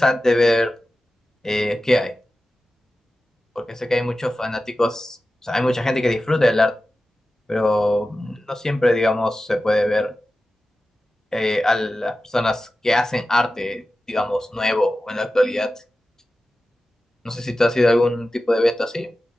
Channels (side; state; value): both; normal; correlation 0.94